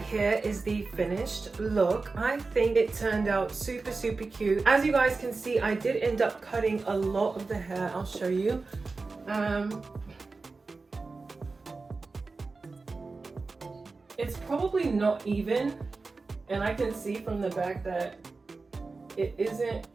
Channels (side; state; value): left; quieter; 3.9 dB